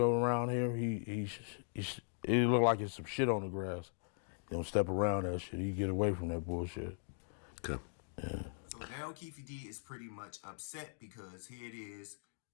around here, it look like it's some shit on the grass. He don't step around that shit. He get away from that bullshit. Okay. Yeah. So now Keefe D is pretty much upset because here it is.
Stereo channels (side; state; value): right; silent; digital silence